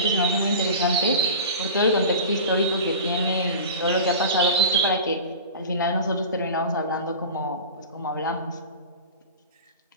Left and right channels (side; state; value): both; inverted; correlation -0.33